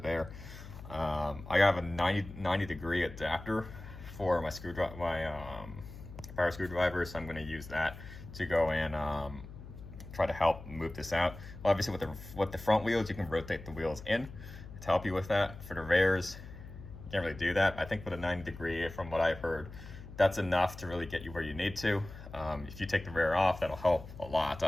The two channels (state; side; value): noise; left; hum, 14 dB below the sound